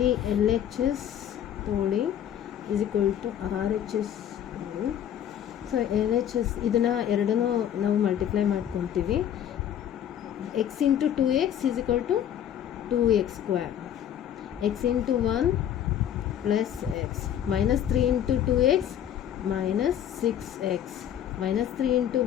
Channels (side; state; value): right; quieter; 10.1 dB